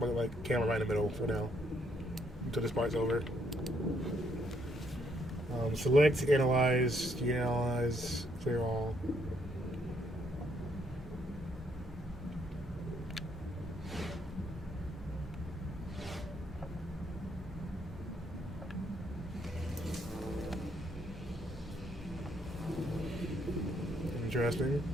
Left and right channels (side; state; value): both; normal; correlation 0.72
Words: camera right in the middle for now until this part's over. Select, analyze, deanalyze, clear all. Interesting.